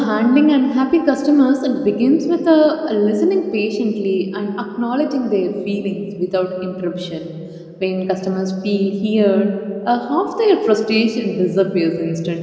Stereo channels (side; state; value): both; identical; correlation 1.00